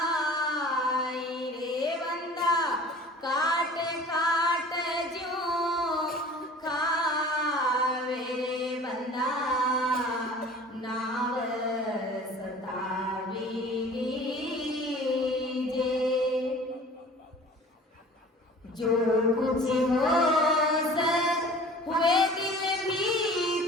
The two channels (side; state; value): both; normal; correlation 0.45